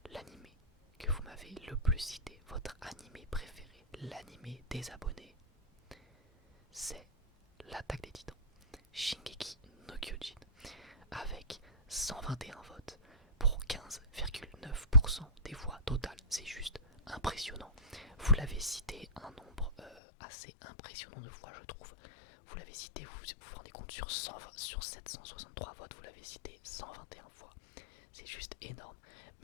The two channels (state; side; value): drops out; right; at 20.0 s